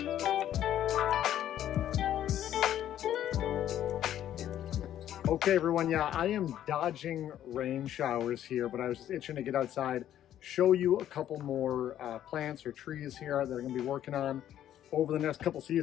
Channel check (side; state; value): right; quieter; 11.4 dB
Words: Okay everyone, yeah, I am dodging rain showers here, but I was just itching to get outside, show you a couple more plants or trees here that I'm going to be working on over the next couple